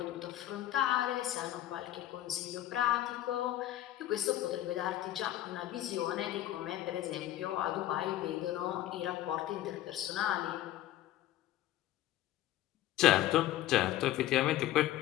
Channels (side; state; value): right; quieter; 13.8 dB